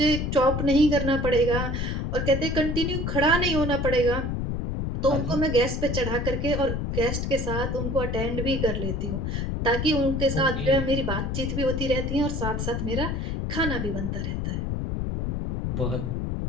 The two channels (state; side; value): noise; left; rumble, 1 dB below the sound